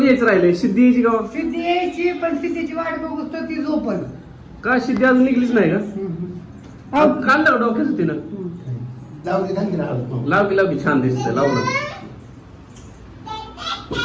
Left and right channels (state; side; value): identical; both; correlation 1.00